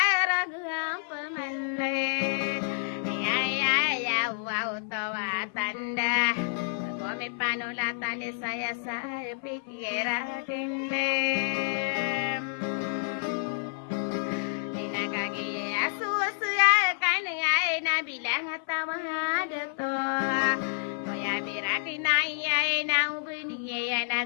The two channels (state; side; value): silent; right; 55 dB below the other